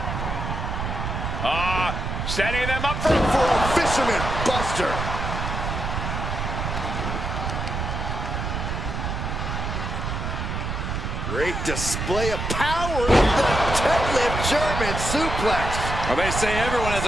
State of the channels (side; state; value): right; noise; rumble, 3 dB below the sound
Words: Setting them up for a fisherman buster. Great display of power. The deadlift German suplex. Well, they say everyone has